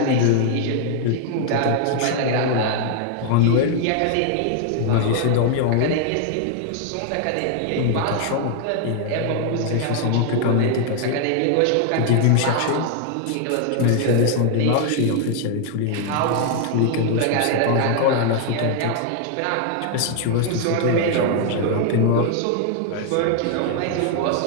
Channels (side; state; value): both; different; correlation 0.00